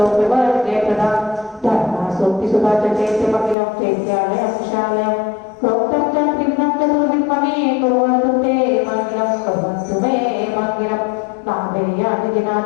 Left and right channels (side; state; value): right; drops out; at 3.6 s